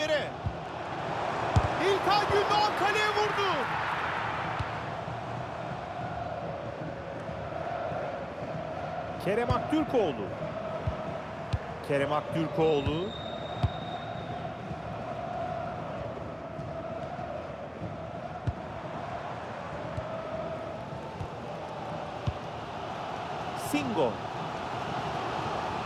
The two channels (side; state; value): both; identical; correlation 1.00